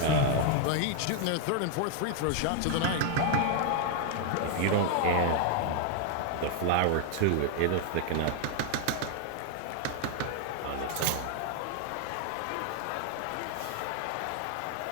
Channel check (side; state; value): both; different; correlation 0.00